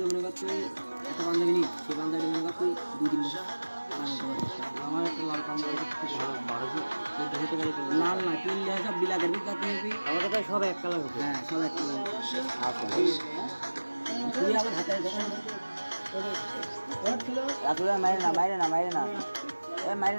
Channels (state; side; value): inverted; both; correlation -1.00